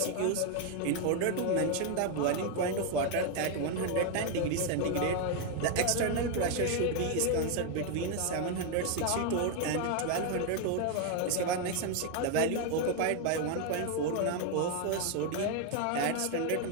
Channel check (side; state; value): both; different; correlation 0.01